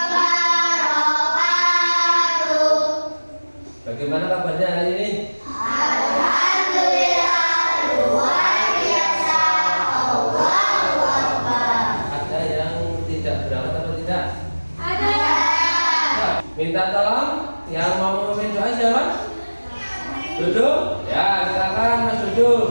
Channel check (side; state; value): both; inverted; correlation -1.00